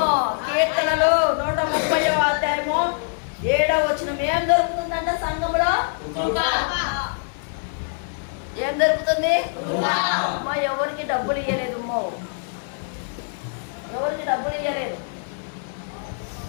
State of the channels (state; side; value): silent; right; digital silence